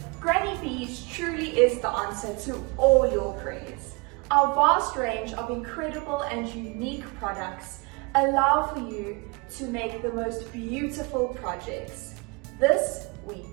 Granny Bees truly is the answer to all your prayers. Our vast range of incredible and unique products allow for you to make the most beautiful projects. This we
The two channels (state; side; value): quieter; left; 28.3 dB